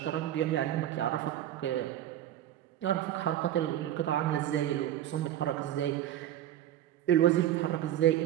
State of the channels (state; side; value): quieter; left; 12.0 dB